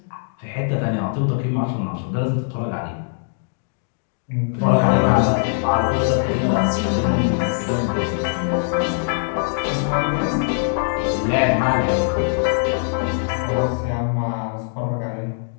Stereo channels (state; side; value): silent; right; digital silence